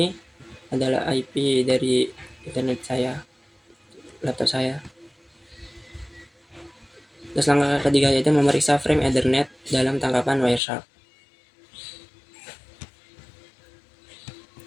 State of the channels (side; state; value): right; drops out; at 10.6 s